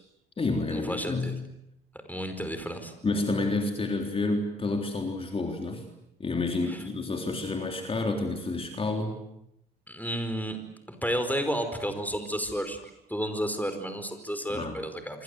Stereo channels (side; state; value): both; normal; correlation 0.69